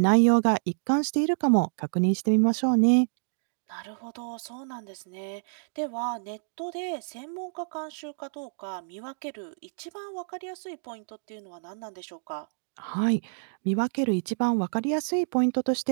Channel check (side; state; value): left; silent; digital silence